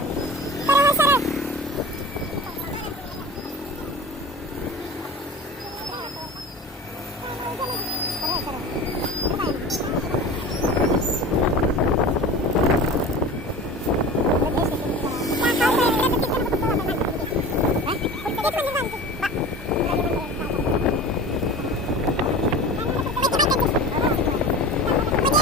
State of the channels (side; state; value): both; normal; correlation 0.35